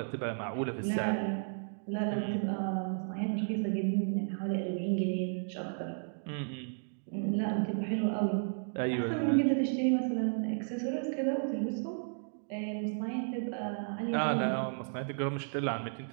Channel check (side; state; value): left; silent; digital silence